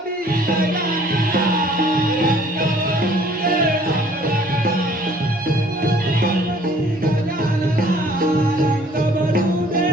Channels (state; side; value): normal; both; correlation 0.56